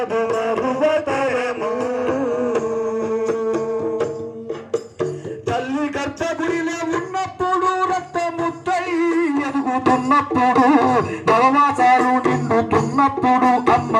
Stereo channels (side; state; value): both; identical; correlation 1.00